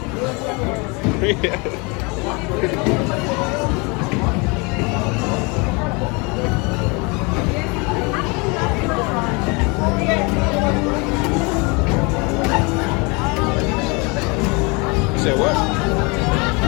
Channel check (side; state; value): right; quieter; 29.1 dB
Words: Freak at it. You said what?